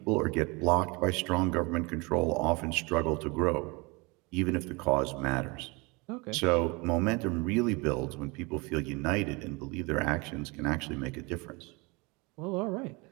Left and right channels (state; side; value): quieter; left; 27.0 dB